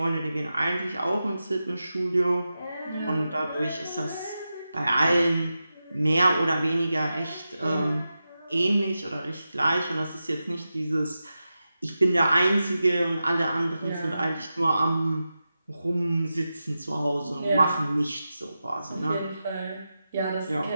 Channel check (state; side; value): inverted; both; correlation -0.91